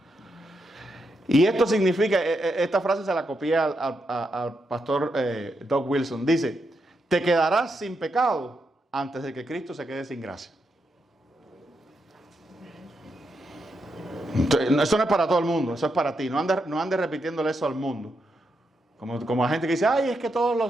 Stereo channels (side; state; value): both; normal; correlation 0.82